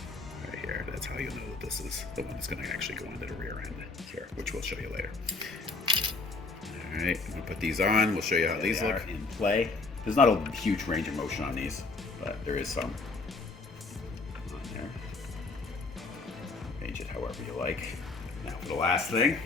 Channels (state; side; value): quieter; right; 3.8 dB